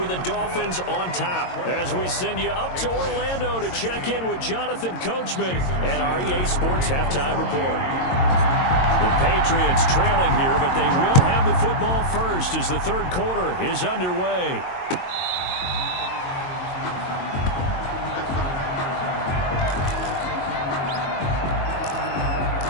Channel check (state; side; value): late; right; 22 ms